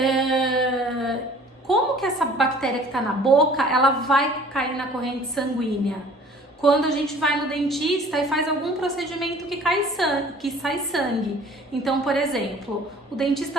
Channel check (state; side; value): normal; both; correlation 0.50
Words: Como que essa bactéria que está na boca, ela vai cair na corrente sanguínea? Quando a gente vai no dentista e faz algum procedimento que sai sangue. Então, por exemplo, o